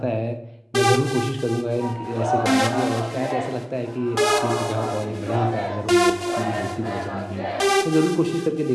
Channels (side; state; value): both; identical; correlation 1.00